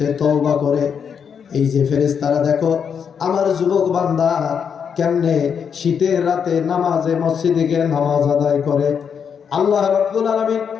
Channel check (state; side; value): quieter; right; 7.1 dB